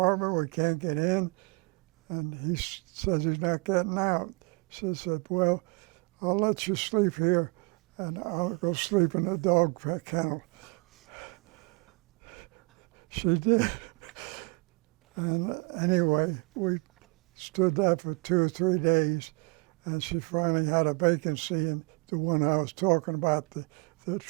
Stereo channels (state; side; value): quieter; left; 30.3 dB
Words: We can't get in." And he says he's not getting out. She said, "Well, I'll let you sleep here, and I'll go sleep in the dog kennel." She did. And anyway, we stood there for 2 or 3 days, and she finally had a vacancy in the one I was talking about, the